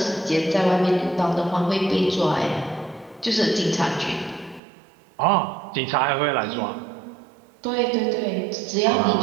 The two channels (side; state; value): left; drops out; at 4.6 s